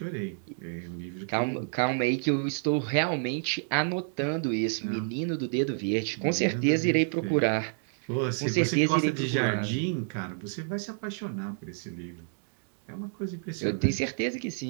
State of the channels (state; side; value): silent; left; digital silence